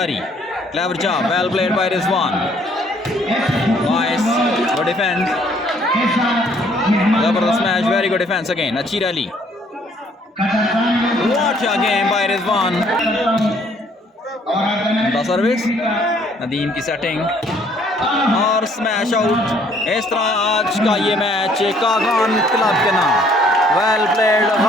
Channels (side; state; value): both; normal; correlation 0.63